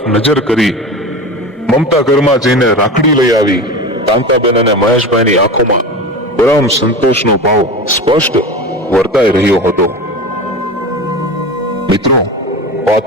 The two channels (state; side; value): normal; both; correlation 0.29